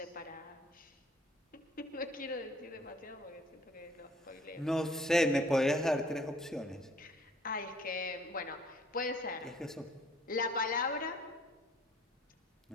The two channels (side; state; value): both; normal; correlation 0.57